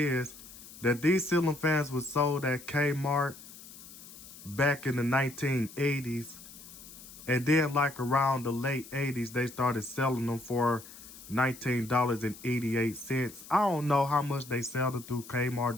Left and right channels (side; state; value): left; noise; hiss, 17 dB below the sound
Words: that these ceiling fans were sold at Kmart back in the 1980s. And then, like, around the late 80s, they started selling them for $19.88. I don't know how much they sell it through